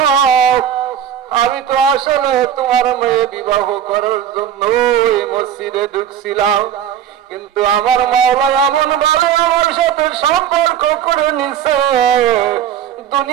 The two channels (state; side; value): quieter; left; 9.7 dB